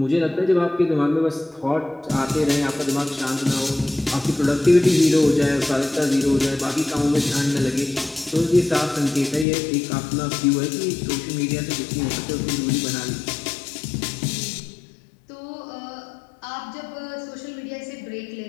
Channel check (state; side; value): drops out; right; at 9.5 s